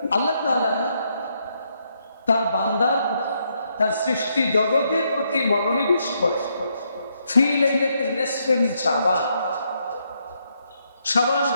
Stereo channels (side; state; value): both; inverted; correlation -0.76